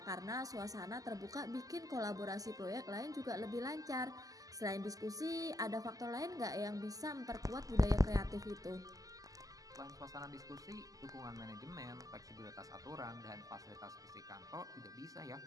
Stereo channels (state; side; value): late; left; 0.17 ms